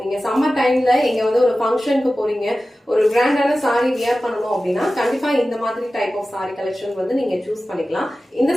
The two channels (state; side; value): normal; both; correlation 0.95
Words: நீங்க சம்மர் டைம்ல எங்க வந்து ஒரு ஃபங்க்ஷனுக்கு போறீங்க, ஒரு கிராண்டான சாரி வியர் பண்ணணும் அப்படின்னா கண்டிப்பா இந்த மாதிரி டைப் ஆஃப் சாரி கலெக்ஷன் வந்து நீங்க சூஸ் பண்ணிக்கலாம். இந்த